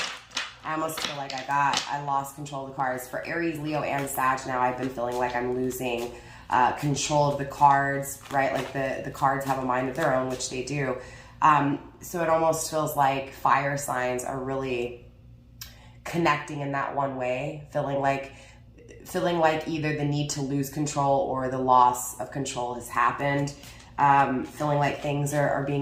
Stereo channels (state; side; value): identical; both; correlation 1.00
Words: I almost feel like I lost control of the cards. For Aries, Leo, and Sag now, I've been feeling like I'm losing control of the cards, right? Like the cards have a mind of their own, which they do. So it almost feels like fire signs are really connecting in that one way, feeling like either the need to lose control or the loss of control has happened. Feeling like things are